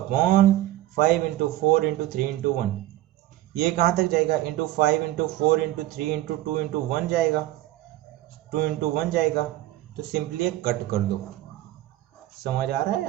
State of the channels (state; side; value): quieter; left; 15.4 dB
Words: 5 into 4 into 3 into 1। ये कहाँ तक जाएगा? Into 5 into 4 into 3 into 2 into 1 जाएगा, 2 इंटू 1 जाएगा, तो सिंपली एक कट कर दो। समझ आ रहा